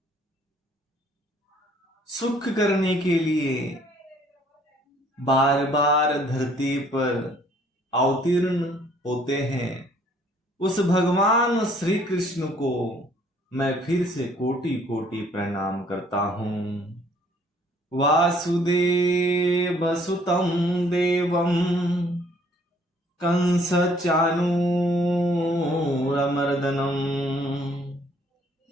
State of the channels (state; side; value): normal; both; correlation 0.61